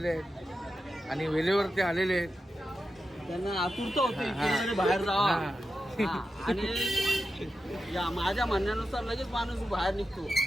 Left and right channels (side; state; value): both; normal; correlation 0.90